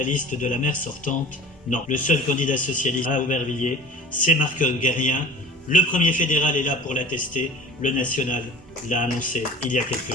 liste de la maire sortante. Non, le seul candidat socialiste à Aubervilliers, c'est Marc Guerrien. Le premier fédéral est là pour l'attester. Le national l'a annoncé il y a quelques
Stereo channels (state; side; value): normal; both; correlation 0.42